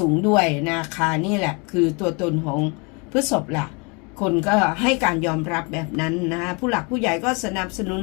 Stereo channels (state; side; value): quieter; right; 31.2 dB